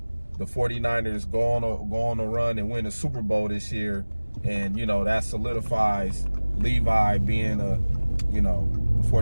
the 49ers go on a run and win a Super Bowl this year, and that solidifies Levi being the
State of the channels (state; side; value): inverted; both; correlation -1.00